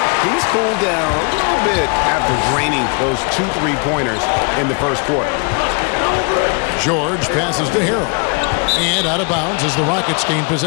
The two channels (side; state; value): right; quieter; 35.4 dB